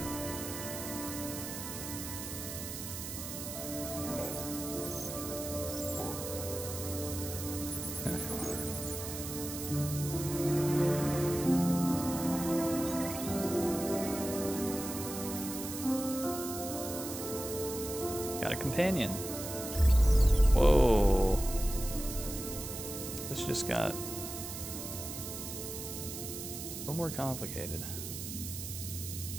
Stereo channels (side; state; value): right; noise; hiss, 7 dB below the sound